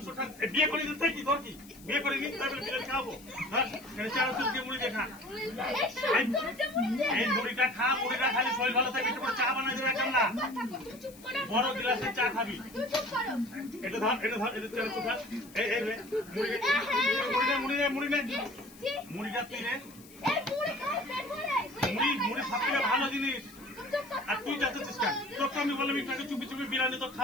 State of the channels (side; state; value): left; noise; hiss, 21 dB below the sound